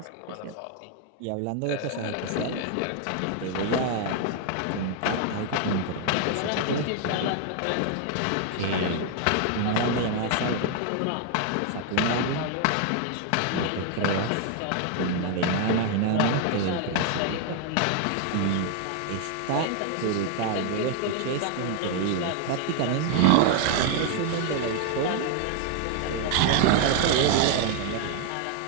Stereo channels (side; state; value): both; different; correlation 0.00